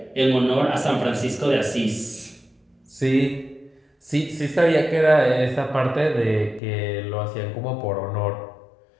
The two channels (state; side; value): drops out; right; at 6.6 s